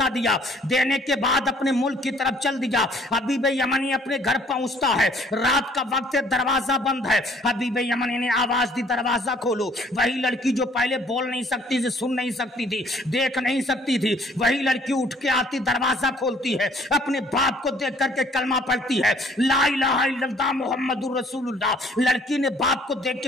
دیا، دینے کے بعد اپنے ملک کی طرف چل دیا۔ حبیب یمنی اپنے گھر پہنچتا ہے، رات کا وقت ہے، دروازہ بند ہے۔ حبیب یمنی نے آواز دی دروازہ کھولو۔ وہی لڑکی جو پہلے بول نہیں سکتی تھی، سن نہیں سکتی تھی، دیکھ نہیں سکتی تھی، وہی لڑکی اٹھ کے آتی، دروازہ کھولتی ہے، اپنے باپ کو دیکھ کر کے کلمہ پڑھتی ہے لا الہ الا اللہ محمد الرسول اللہ۔ لڑکی نے باپ کو دیکھ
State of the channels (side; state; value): both; normal; correlation 0.59